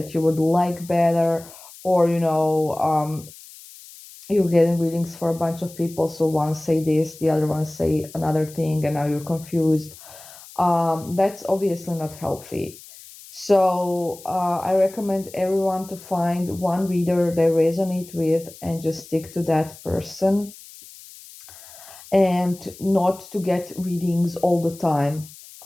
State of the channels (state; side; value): noise; left; hiss, 19 dB below the sound